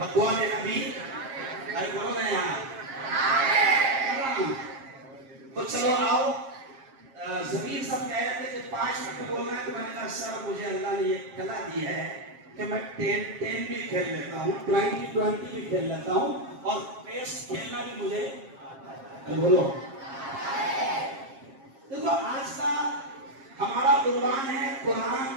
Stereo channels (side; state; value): left; late; 7.4 ms